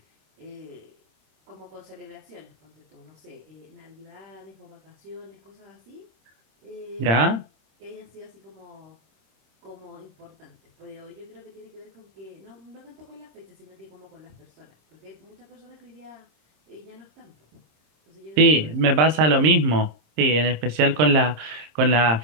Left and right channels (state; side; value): late; left; 26 ms